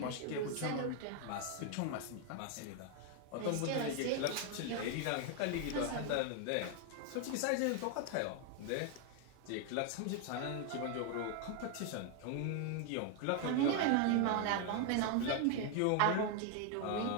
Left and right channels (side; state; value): both; different; correlation 0.01